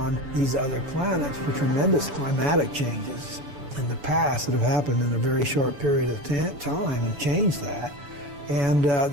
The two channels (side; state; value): left; late; 7.0 ms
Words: these other planets for tremendous climatic changes in the past that have happened in a very short period of time and changed that. And